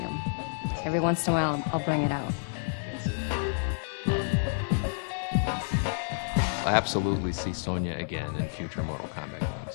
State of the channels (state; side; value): silent; right; digital silence